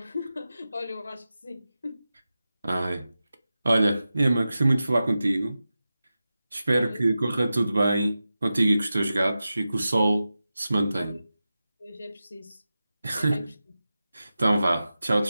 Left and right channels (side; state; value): both; inverted; correlation -0.93